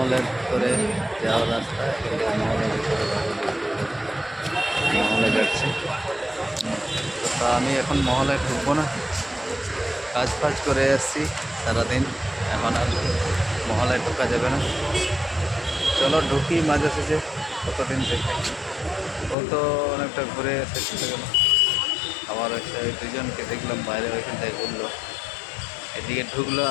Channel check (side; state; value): right; drops out; at 19.4 s